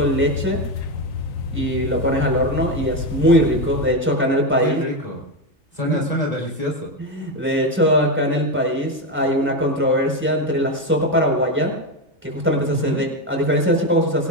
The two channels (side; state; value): both; normal; correlation 0.11